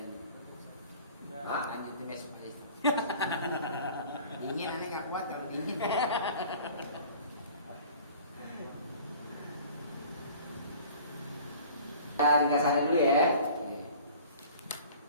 Lanjutin besok aja. Dingin nanti nggak kuat kalau dingin. Ringkasannya dulu ya.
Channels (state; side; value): inverted; both; correlation -0.45